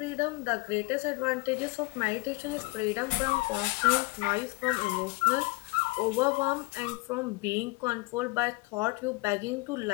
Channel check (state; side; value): quieter; right; 24.2 dB